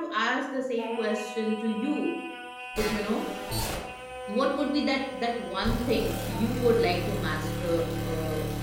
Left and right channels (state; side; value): identical; both; correlation 1.00